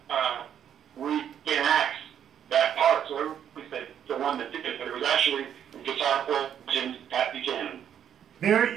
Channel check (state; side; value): quieter; left; 9.3 dB